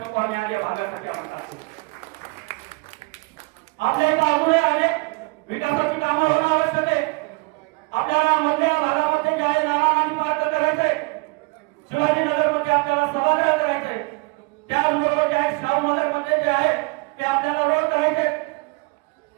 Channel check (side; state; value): left; quieter; 27.9 dB